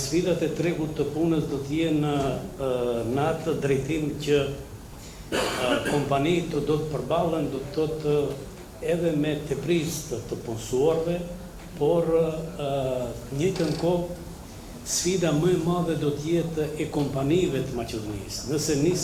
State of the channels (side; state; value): both; identical; correlation 1.00